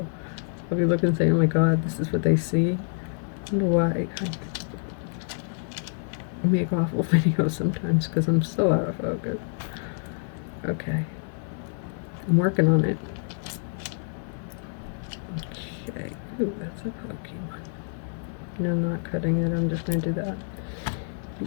I'll be looking and saying, oh my god, this is what they see. I wonder why I make awful videos sometimes because I'm so out of focus. Okay. I'm working on it. Okay. Ooh, that's a pokey one. No, I'm not cutting it. I'm just going to do that.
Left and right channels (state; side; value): silent; right; 60 dB below the other